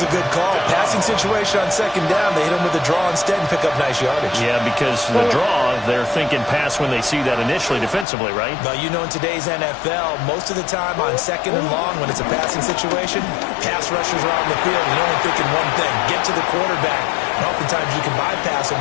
good call. Passing situation on 2nd down. They hit him with a draw instead and pick up nice yardage. Yeah, because the draw, they're thinking pass when they see that initially defensively, right? But you know, in today's NFL, most of the time on 2nd and long, when it's a passing situation, pass rushers are out in the field and you're only thinking one thing, get to the quarterback. And oftentimes you can bypass him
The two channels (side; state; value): right; drops out; at 8.1 s